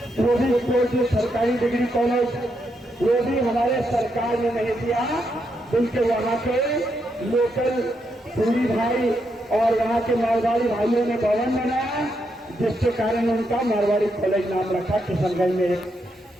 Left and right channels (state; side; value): normal; both; correlation 0.80